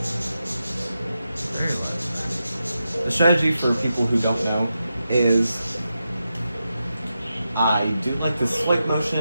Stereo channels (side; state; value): both; inverted; correlation -0.88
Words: Very loud. The strategy for people who don't know is I do like this swipe